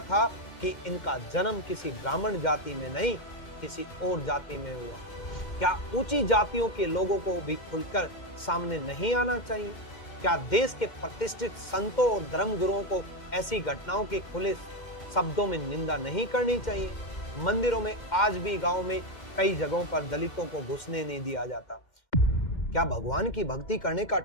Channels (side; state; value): right; late; 2.1 ms